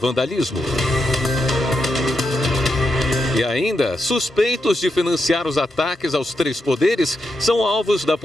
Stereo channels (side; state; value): both; normal; correlation 0.85